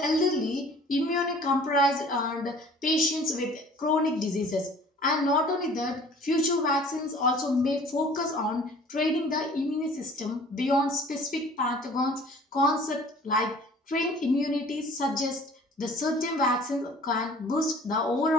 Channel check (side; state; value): both; normal; correlation 0.49